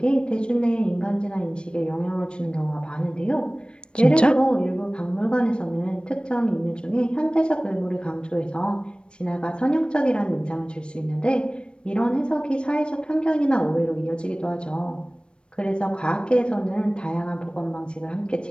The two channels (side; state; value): right; late; 0.056 ms